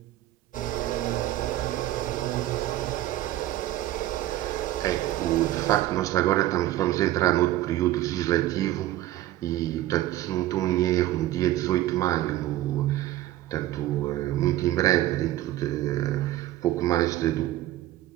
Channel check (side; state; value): left; quieter; 14.8 dB